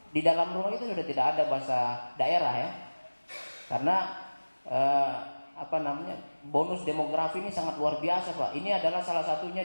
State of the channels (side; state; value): both; inverted; correlation -1.00